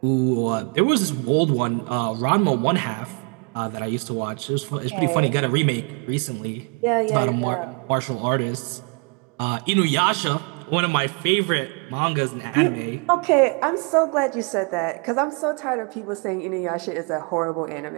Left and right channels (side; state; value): left; quieter; 34.1 dB